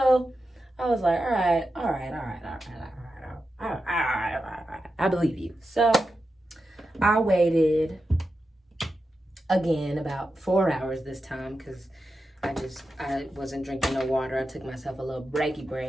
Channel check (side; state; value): both; normal; correlation 0.90